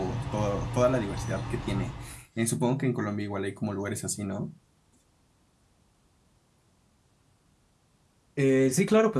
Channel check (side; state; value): both; identical; correlation 1.00